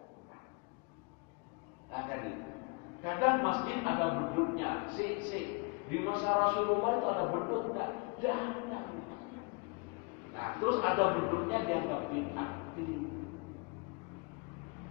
Nah, kan itu. Kadang masjid ada beduknya, di masa Rasulullah itu ada beduk, tidak ada. Nah, terus ada beduknya dianggap bid'ah.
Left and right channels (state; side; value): quieter; right; 31.3 dB